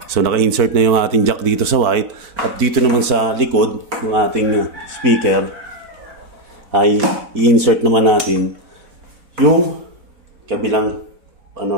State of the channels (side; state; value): left; late; 4.0 ms